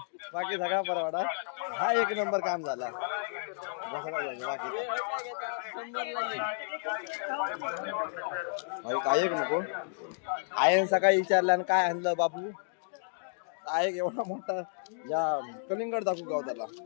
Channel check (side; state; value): right; silent; digital silence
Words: बाकी सगळा परवाडा हा 1 नंबर काम झाला बाकी काय एक नको आयन सकाळी विचारल्यानं काय आणलं बाबू काय एवढा मोठा या कलिंगड दाखवू गाव त्याला